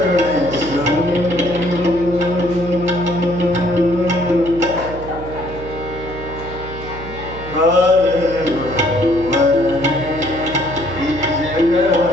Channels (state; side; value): noise; right; hum, 11 dB below the sound